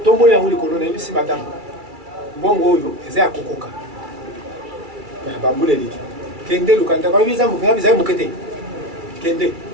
il y a un colonel, ici, madame. Bon, yo, et c'est à Kokoka. Il y a un bambou, les lits. Kende, le candidat, quand il y a un mouqueté. Kende.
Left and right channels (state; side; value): late; left; 2.3 ms